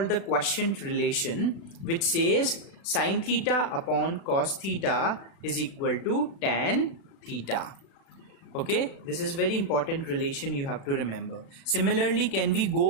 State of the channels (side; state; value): right; late; 36 ms